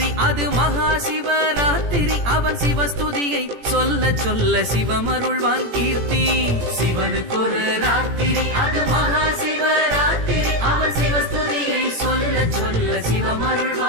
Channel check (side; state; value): left; late; 17 ms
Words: அது மகா சிவராத்திரி, அவன் சிவஸ்துதியை சொல்ல சொல்ல சிவமருள்வான் கீர்த்தி. சிவனுக்கொரு ராத்திரி அது மகா சிவராத்திரி, அவன் சிவஸ்துதியை சொல்ல சொல்ல